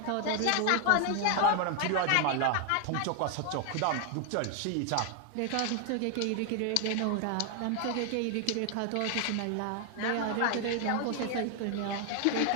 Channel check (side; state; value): both; different; correlation 0.00